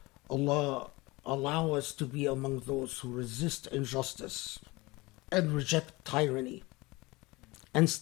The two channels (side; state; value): right; quieter; 22.9 dB